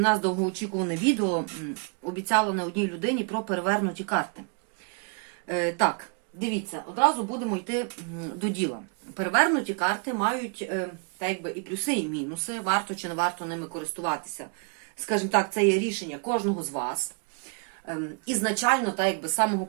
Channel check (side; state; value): left; quieter; 38.3 dB